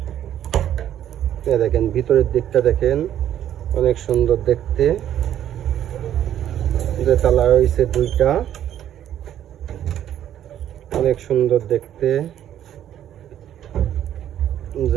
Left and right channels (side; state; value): left; quieter; 10.9 dB